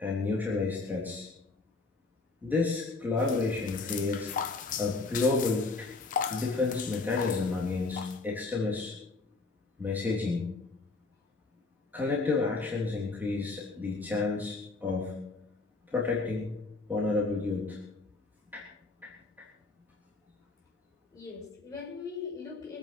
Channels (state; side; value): quieter; right; 3.7 dB